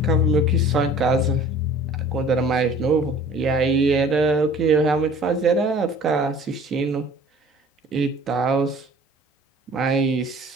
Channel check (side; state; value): both; normal; correlation 0.48